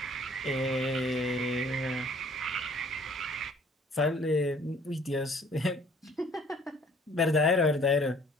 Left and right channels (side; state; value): both; normal; correlation 0.56